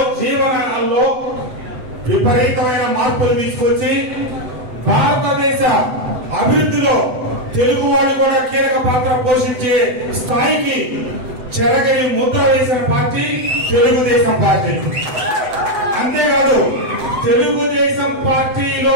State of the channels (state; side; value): late; left; 7.9 ms